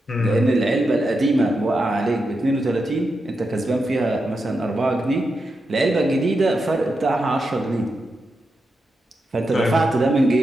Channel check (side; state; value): both; normal; correlation 0.87